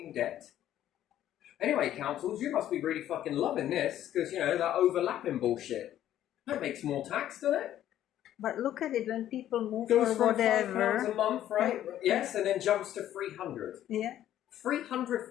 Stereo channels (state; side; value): quieter; right; 12.0 dB